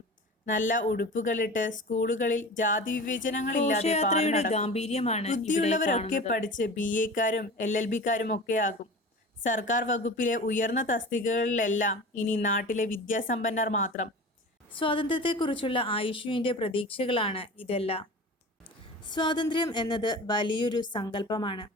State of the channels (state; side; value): normal; both; correlation 0.35